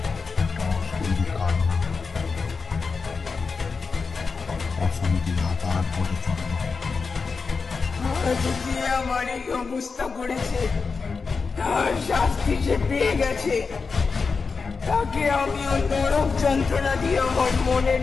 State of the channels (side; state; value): right; quieter; 4.8 dB